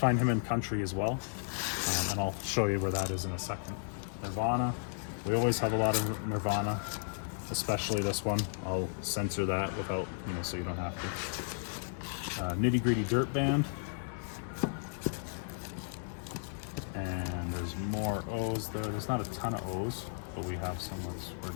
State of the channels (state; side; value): silent; right; digital silence